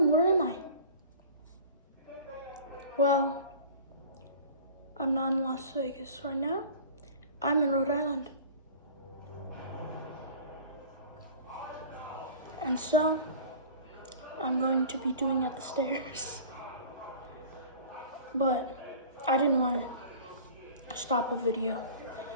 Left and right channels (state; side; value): inverted; both; correlation -0.42